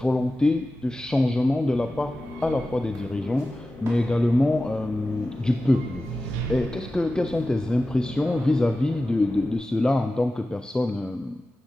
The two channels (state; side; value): normal; both; correlation 0.95